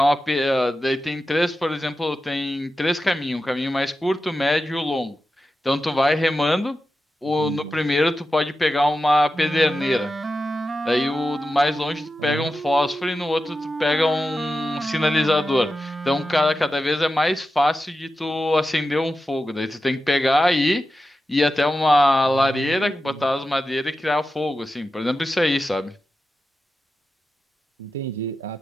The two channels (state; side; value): normal; both; correlation 0.91